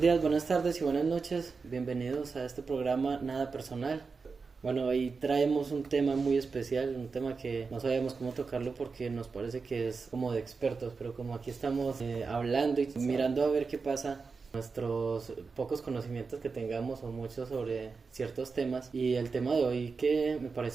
buenas tardes y buenas noches. Bienvenidos a este programa Nada Personal. Bueno, hoy traemos un tema muy especial, un tema que no sabíamos cómo tocarlo porque nos parece que es como de expertos, pero como aquí estamos hablando y mirando a ver qué pasa, nuestros pocos conocimientos que tengamos o muchos sobre ciertos temas, y el tema de hoy que me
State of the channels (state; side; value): quieter; left; 4.7 dB